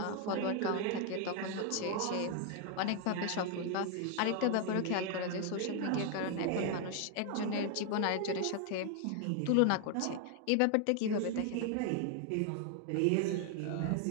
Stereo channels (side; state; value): both; different; correlation 0.00